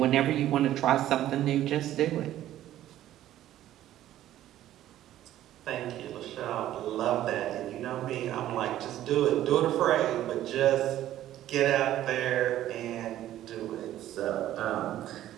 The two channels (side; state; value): left; quieter; 13.0 dB